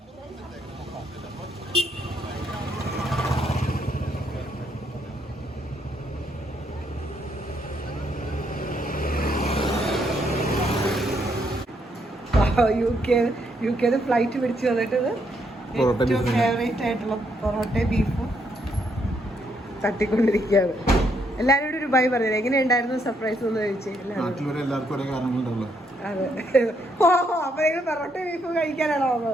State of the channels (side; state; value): both; normal; correlation 0.74